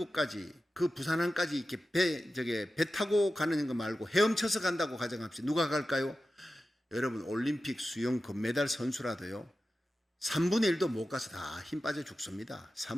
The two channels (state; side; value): normal; both; correlation 0.93